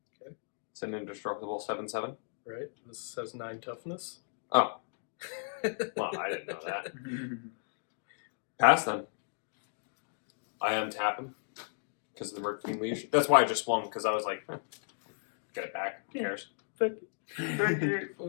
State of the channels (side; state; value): right; silent; digital silence